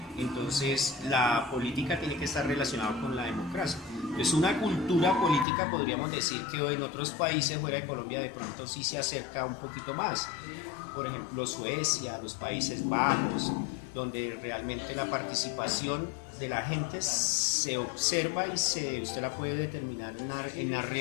Entonces, la política tiene que estar relacionada con la democracia. Es una cultura política, podríamos decir, que en otros países fuera de Colombia de pronto sí se acerca un poquito más. Por ejemplo, Suecia, los Países Bajos, donde realmente la participación de la gente se observa y usted la puede determinar en la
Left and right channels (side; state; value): right; drops out; at 5.5 s